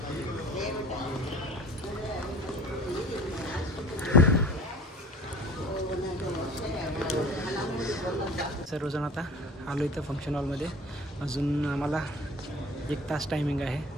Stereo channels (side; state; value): both; normal; correlation 0.44